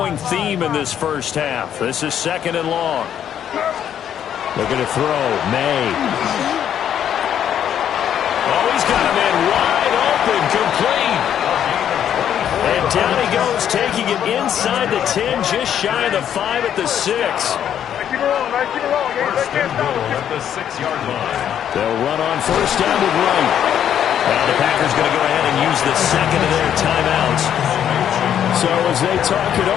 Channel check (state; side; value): quieter; right; 9.7 dB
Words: theme in this first half. This is 2nd and long. They're going to throw. May. Oh, he's got a man wide open, complete. And down he goes, taking it inside the 10, just shy of the 5 at the 6. First and goal at the 6-yard line. They'll run on first down with Wright. Now the Packers going to go ahead and use the 2nd of their timeouts. So as they talk it